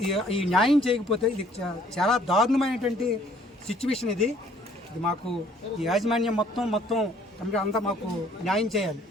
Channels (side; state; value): both; normal; correlation 0.60